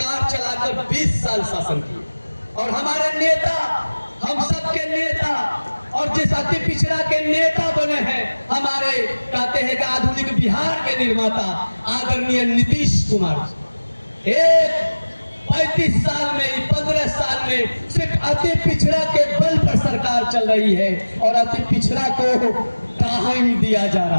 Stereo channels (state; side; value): inverted; both; correlation -1.00